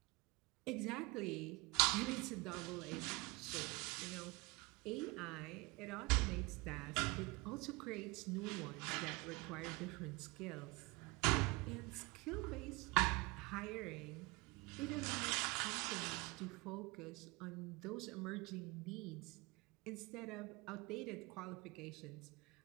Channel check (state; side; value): quieter; left; 25.5 dB